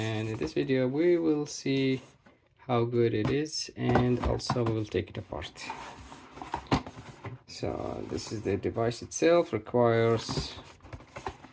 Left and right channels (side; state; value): both; identical; correlation 1.00